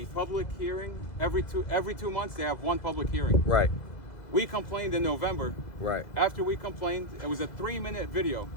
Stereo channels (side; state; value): right; late; 2.0 ms